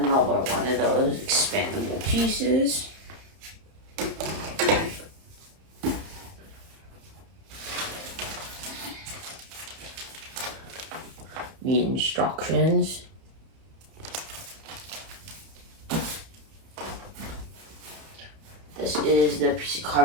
one of those expandable pieces. The instructions. This is the piece of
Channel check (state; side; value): late; left; 30 ms